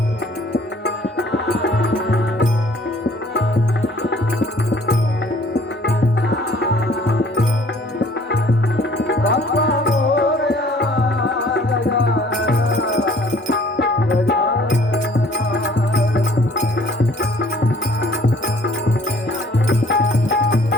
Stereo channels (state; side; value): normal; both; correlation 0.56